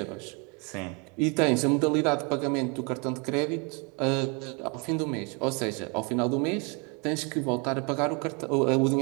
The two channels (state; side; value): quieter; left; 32.8 dB